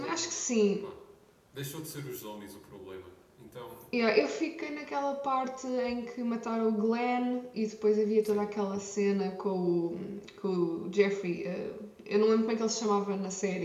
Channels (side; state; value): both; identical; correlation 1.00